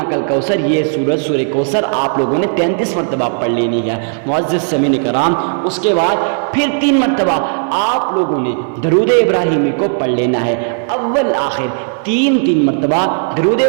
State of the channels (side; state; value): left; silent; 65 dB below the other